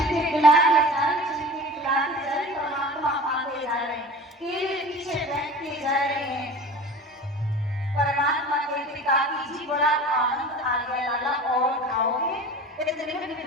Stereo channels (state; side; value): normal; both; correlation 0.37